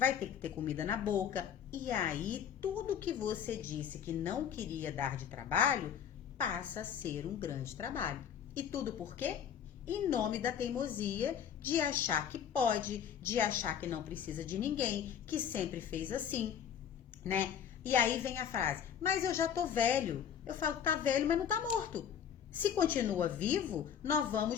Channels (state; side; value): quieter; right; 8.6 dB